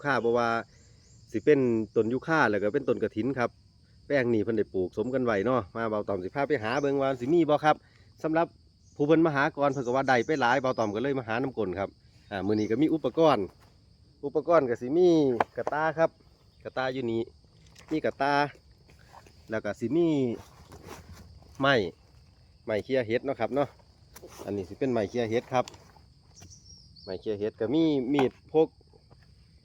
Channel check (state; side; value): identical; both; correlation 1.00